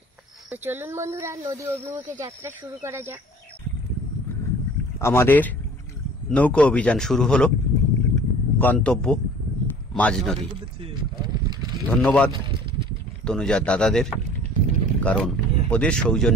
তো চলুন বন্ধুরা, নদী অভিমুখে যাত্রা শুরু করা যাক। আমাদের নৌকো অভিযান শুরু হলো, গন্তব্য মাঝ নদী। ধন্যবাদ তনুজার দাদাদের, কারণ ওদের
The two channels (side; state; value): both; normal; correlation 0.48